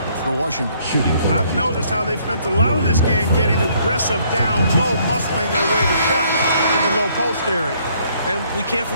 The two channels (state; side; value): inverted; both; correlation -0.65